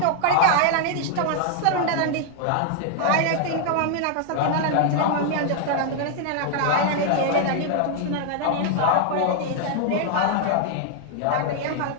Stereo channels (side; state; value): both; different; correlation 0.00